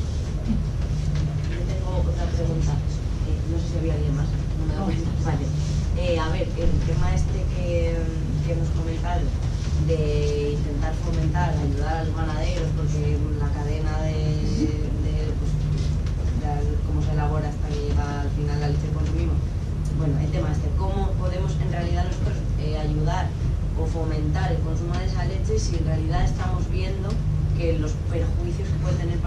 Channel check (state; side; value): identical; both; correlation 1.00